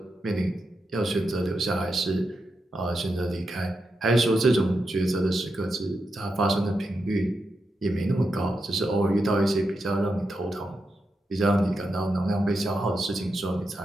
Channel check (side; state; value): both; normal; correlation 0.86